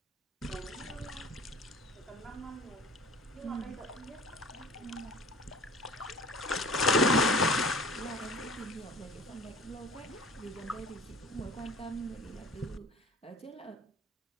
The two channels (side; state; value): both; normal; correlation 0.45